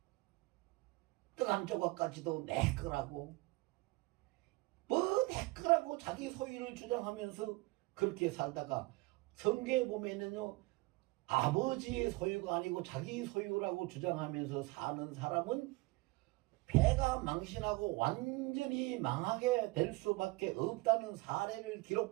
떡 한 조각까지도 내 거라고, 뭐 내 거라고 자기 소유를 주장하면서 그렇게 살다가 성경에 보면은요, 아버지의 소유가 아니고 자기 소유라고 주장하면서 사는 사람은 배가 망신하고 완전히 망하게 될 수밖에 없다는 사례를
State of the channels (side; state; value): left; quieter; 23.2 dB